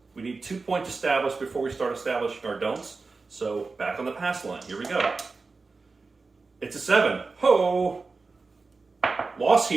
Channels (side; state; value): left; quieter; 4.1 dB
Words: We need 2 points established before we start establishing our don'ts. So back on the pass line. Here we go. It's a 7. Ho! Loss